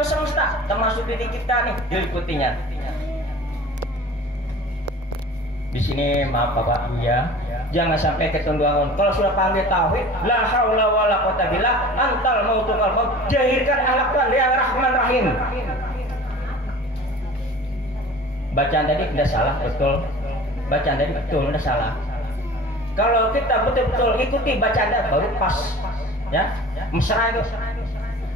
semesta, termasuk diri kita nih, diliputinya. Di sini maaf Bapak ya, jangan sampai ketunduan. Kalau sudah panggil tauhid, la haula wala quwata billah, antal mautukal maut, jahirkan akhlak Tuhan yang Rahman Rahim. Bacaan tadi tidak salah, betul. Bacaan tadi betul, tidak salah. Kalau kita betul-betul ikuti bacaan baru pas, ya, mesra itu.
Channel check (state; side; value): normal; both; correlation 0.42